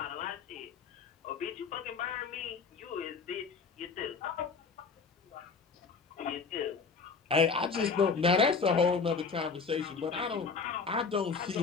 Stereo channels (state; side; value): quieter; right; 5.1 dB